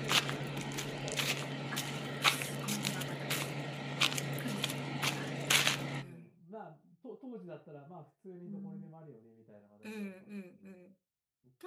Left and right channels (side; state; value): both; identical; correlation 1.00